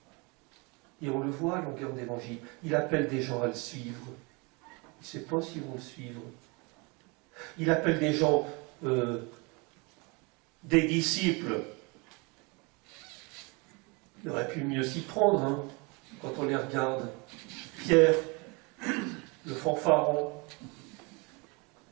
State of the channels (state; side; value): quieter; left; 28.9 dB